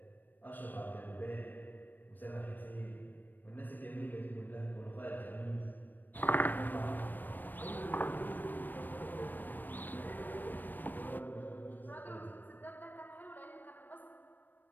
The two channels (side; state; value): right; late; 0.090 ms